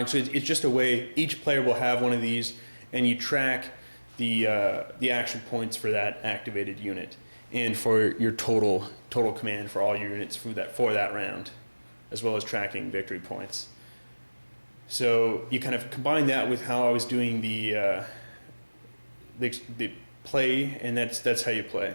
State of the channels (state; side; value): inverted; both; correlation -1.00